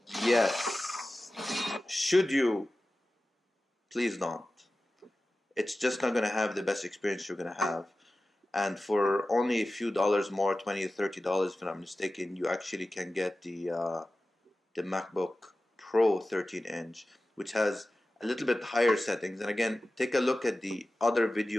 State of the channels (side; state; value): both; normal; correlation 0.95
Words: Yes. Should you? Please don't. It's just not gonna have the best experience you're gonna have. And for only a few dollars more, $20 or $30 if I'm not mistaken, you actually can get the MacBook Pro 13-inch, which has a little bit higher settings. And again, take a look at the other